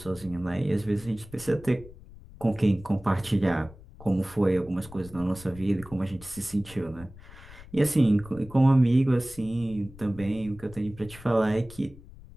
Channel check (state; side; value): noise; left; rumble, 19 dB below the sound